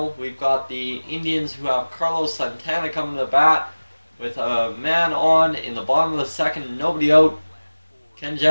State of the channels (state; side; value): inverted; both; correlation -1.00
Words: we've got the Indians who have Carlos Santana coming to the bat with a man on in the bottom of the 2nd, nobody out. Can